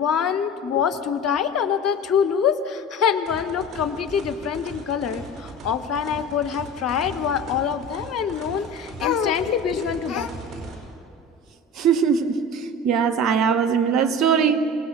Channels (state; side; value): normal; both; correlation 0.33